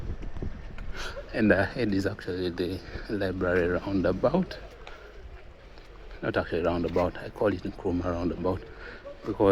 And ahead is actually the library roundabout. Not actually roundabout, I call it Nkrumah roundabout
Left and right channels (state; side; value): identical; both; correlation 1.00